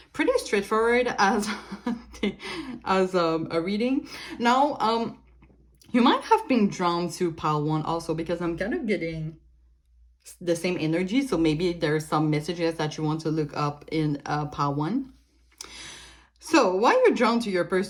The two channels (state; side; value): identical; both; correlation 1.00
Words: pretty straightforward as a reading. Now, you might have been drawn to pile 1 also, because I'm kind of getting the same energy. So maybe there's some messages that you want to look up in pile 1. So why you're drawn to your